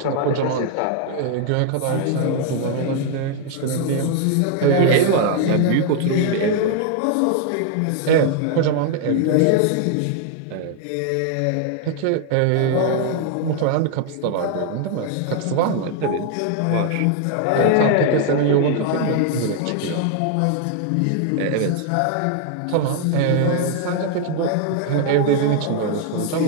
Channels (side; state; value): both; different; correlation 0.00